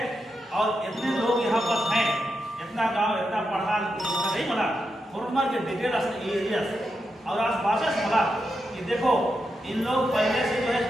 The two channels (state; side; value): normal; both; correlation 0.86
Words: और इतने लोग यहाँ पर हैं इतना गांव इतना पढ़ा नहीं बना फॉर्मर के डिटेल एरिया और आज भाषा बोला कि देखो इन लोग पहले से जो है